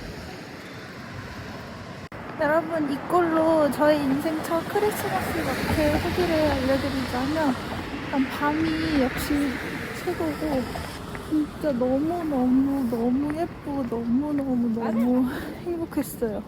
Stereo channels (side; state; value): both; identical; correlation 1.00